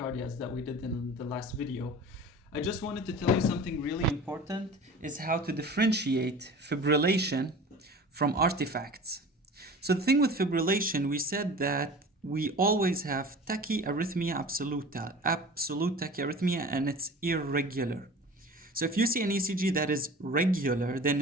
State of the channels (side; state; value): both; normal; correlation 0.39